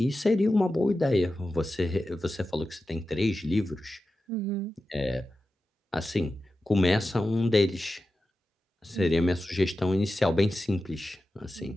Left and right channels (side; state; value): both; normal; correlation 0.92